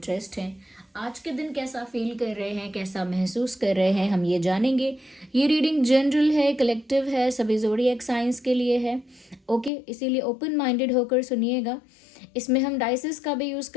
हैं। आज के दिन कैसा फील कर रहे हैं, कैसा महसूस कर रहे हैं, हम ये जानेंगे। ये रीडिंग जनरल है, कलेक्टिव है, सभी ज़ोडिएक साइंस के लिए है। ओके, इसीलिए ओपन माइंडेड होकर सुनिएगा। इसमें हम डाइसेस का भी यूज़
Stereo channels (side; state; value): right; drops out; at 9.7 s